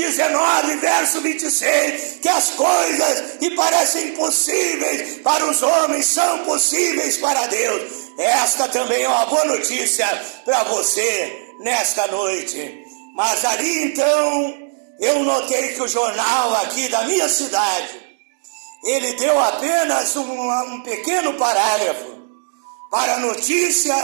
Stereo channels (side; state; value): left; silent; digital silence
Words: verso 26, que as coisas que parecem impossíveis para os homens são possíveis para Deus. Esta também é uma boa notícia para você nesta noite. Mas ali então, eu notei que o jornal aqui da minha cidade, ele deu apenas um pequeno parágrafo para a notícia